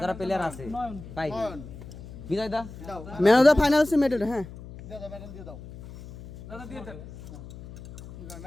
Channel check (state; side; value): noise; left; hum, 14 dB below the sound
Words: যারা প্লেয়ার আছে পাই বিজয় দা ম্যান অফ দ্য ফাইনাল সে মেডেল হ্যাঁ দাও দাও মেডেল দিয়ে দাও দাদা দিয়ে দেন